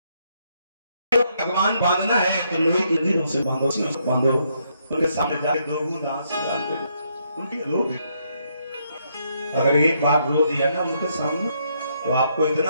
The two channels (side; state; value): both; inverted; correlation -0.74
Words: भगवान बांधना है तो लोहे की जंजीरों से बांधो, बांधो उनके सामने जाके 2 बूंद आंसू डाल दो, उनकी रो दे। अगर एक बार रो दिया ना उनके सामने तो आपको